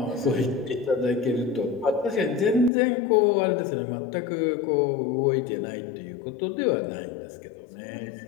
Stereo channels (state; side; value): drops out; right; at 2.7 s